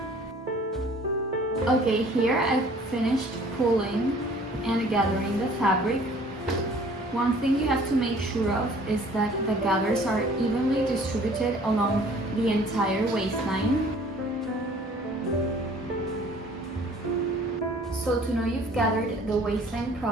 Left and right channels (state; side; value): normal; both; correlation 0.53